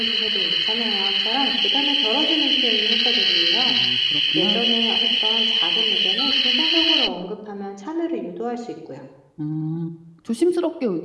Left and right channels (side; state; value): both; identical; correlation 1.00